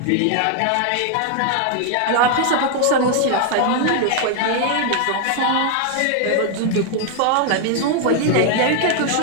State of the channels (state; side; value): different; both; correlation 0.00